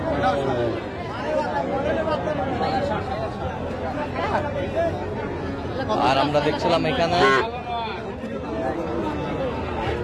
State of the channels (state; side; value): identical; both; correlation 1.00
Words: আর আমরা দেখছিলাম এখানে